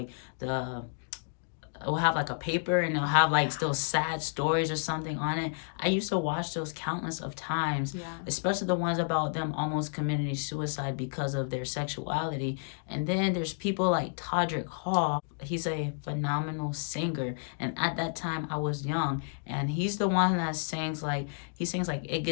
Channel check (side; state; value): right; silent; digital silence